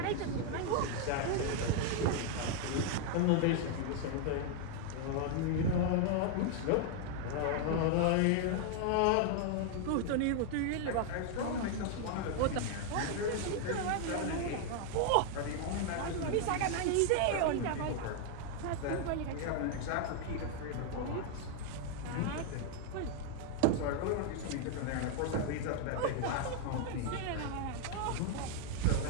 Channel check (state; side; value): different; both; correlation 0.00